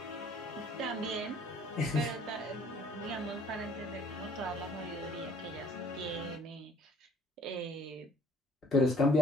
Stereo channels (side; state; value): both; normal; correlation 0.56